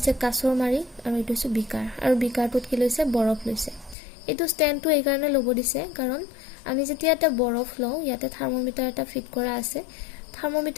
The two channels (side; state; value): right; drops out; at 4.0 s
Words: কাছৰ মাৰি, আৰু এইটো হৈছে বিকাৰ। আৰু বিকাৰটোত কি লৈছে, বৰফ লৈছে। এইটো ষ্টেণ্ডটো এইকাৰণে ল'ব দিছে কাৰণ আমি যেতিয়া এটা বৰফ লওঁ, ইয়াতে থাৰ্মোমিটাৰ এটা ফিট কৰা আছে।